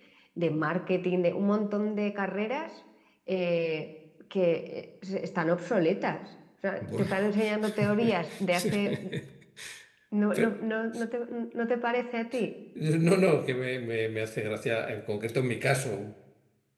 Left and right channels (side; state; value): both; identical; correlation 1.00